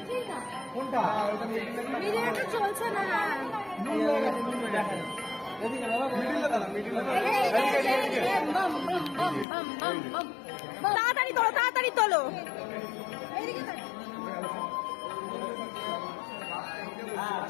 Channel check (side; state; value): right; drops out; at 9.5 s